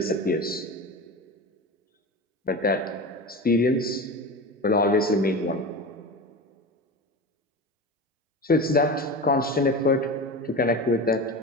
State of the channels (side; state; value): both; normal; correlation 0.28